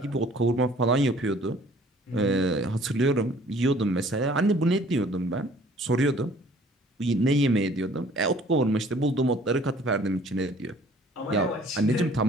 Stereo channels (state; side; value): normal; both; correlation 0.55